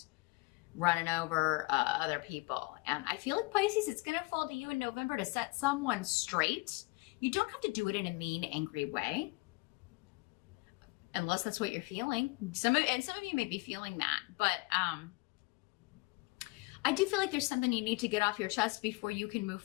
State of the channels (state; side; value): quieter; right; 26.1 dB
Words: running over other people. And I feel like Pisces, it's going to fall to you in November to set someone straight. You don't have to do it in a mean, angry way. Unless that's what you're feeling. Some of you may be feeling that. But I do feel like there's something you need to get off your chest before you can move